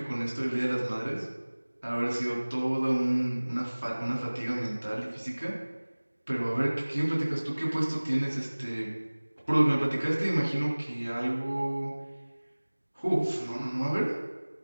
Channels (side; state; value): both; inverted; correlation -1.00